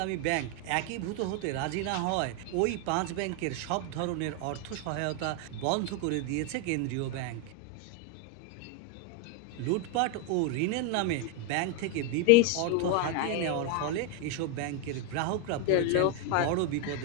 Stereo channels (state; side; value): different; both; correlation 0.01